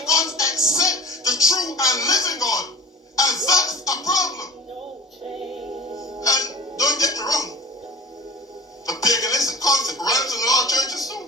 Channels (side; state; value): both; normal; correlation 0.40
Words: God except the true and living God. And that's a problem. And don't get me wrong, the paganistic concept runs in a lot of churches